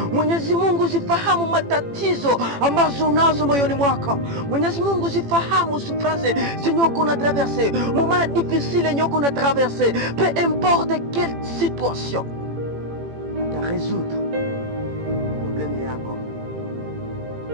Mwenyezi Mungu zifahamu matatizo ambazo unazo moyoni mwako. Mwenyezi Mungu zifahamu souffrance zenye uko na traverser, moment difficile yenye uko na traverser. Peu importe quelle situation, ata résoudre problème yako.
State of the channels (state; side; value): late; left; 18 ms